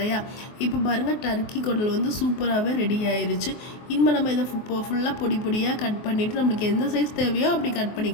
இப்போ பாருங்கள், டர்க்கி குடல் வந்து சூப்பராகவே ரெடி ஆயிடுச்சு. இனிமேல் நம்ம இதை ஃபுல்லாக பொடி பொடியாக கட் பண்ணிவிட்டு நம்மளுக்கு எந்த சைஸ் தேவையோ அப்படி கட்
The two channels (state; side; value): late; right; 24 ms